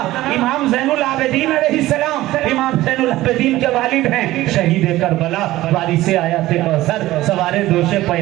امام زین العابدین علیہ السلام، امام زین العابدین کے والد ہیں شہید کربلا، وارث آیات کوثر، سوار دوش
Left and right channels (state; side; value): quieter; left; 16.5 dB